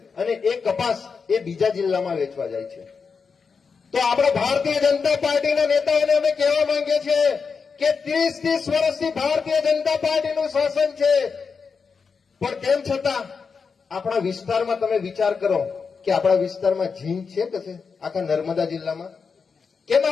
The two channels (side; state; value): right; quieter; 5.4 dB